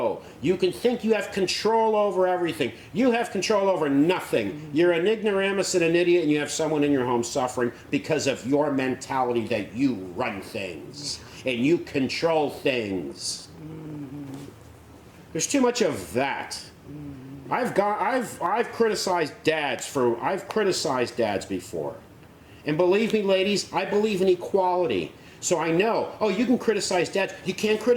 You can think you have control over everything. You have control over nothing. You're an ignoramus and an idiot, and you have someone in your home suffering because of your mentality that you run things and you control things. There's too much of that. I've criticized dads before. And believe me, ladies, I believe in equality. So I know, oh, you can criticize dads. You can't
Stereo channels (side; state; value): both; identical; correlation 1.00